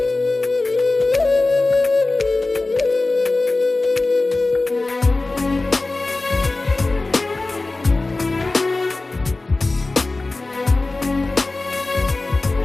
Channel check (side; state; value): right; quieter; 3.2 dB